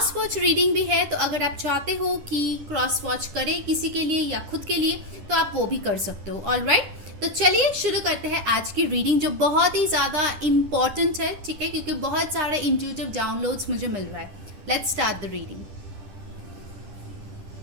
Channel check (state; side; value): late; left; 10 ms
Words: वॉच रीडिंग भी है, तो अगर आप चाहते हो कि क्रॉस वॉच करें किसी के लिए या खुद के लिए तो आप वो भी कर सकते हो। ऑलराइट, तो चलिए शुरू करते हैं आज की रीडिंग जो बहुत ही ज़्यादा इम्पॉर्टेंट है। ठीक है, क्योंकि बहुत सारे इंट्यूटिव डाउनलोड्स मुझे मिल रहा है। Let's start the reading.